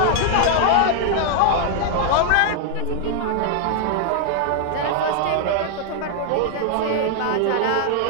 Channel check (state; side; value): different; both; correlation 0.00